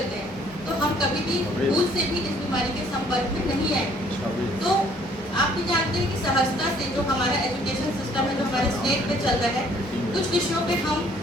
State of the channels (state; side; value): normal; both; correlation 0.61